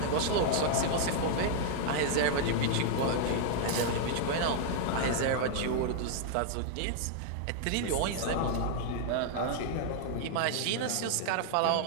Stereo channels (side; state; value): both; different; correlation -0.01